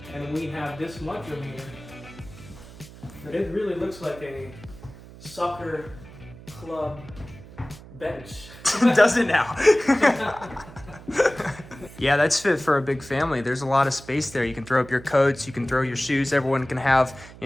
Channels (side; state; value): right; noise; hum, 18 dB below the sound